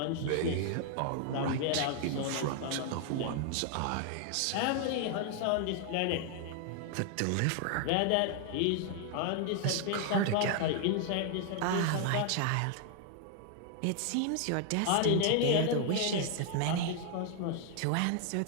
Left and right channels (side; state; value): both; different; correlation 0.00